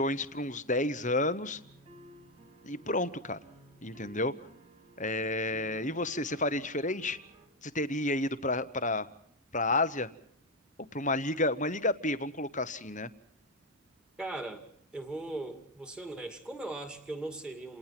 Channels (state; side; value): normal; both; correlation 0.08